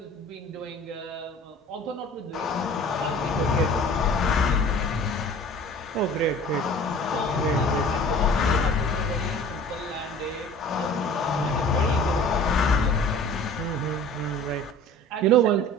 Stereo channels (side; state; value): both; normal; correlation 0.45